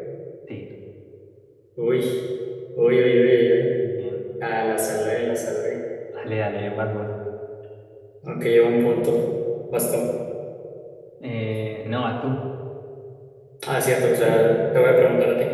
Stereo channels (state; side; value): identical; both; correlation 1.00